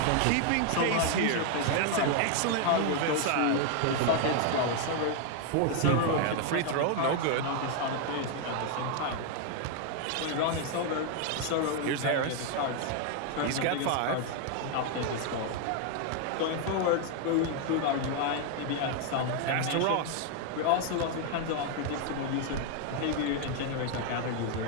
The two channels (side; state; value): both; different; correlation 0.00